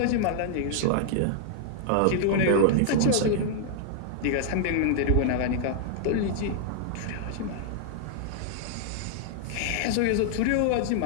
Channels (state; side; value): different; both; correlation -0.01